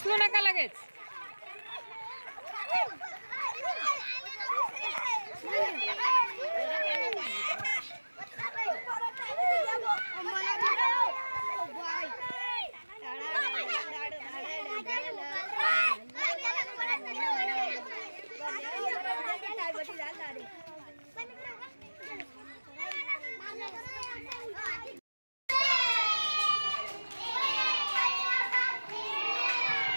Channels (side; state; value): both; inverted; correlation -1.00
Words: उचलू नका लगेच.